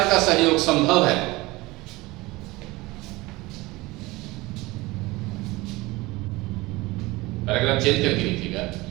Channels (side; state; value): left; quieter; 21.3 dB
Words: का सहयोग संभव है? पैराग्राफ चेंज करके लिखिएगा।